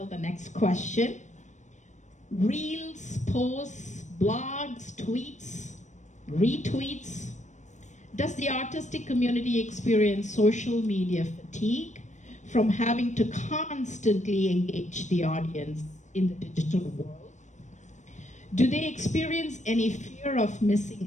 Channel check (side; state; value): right; late; 0.35 ms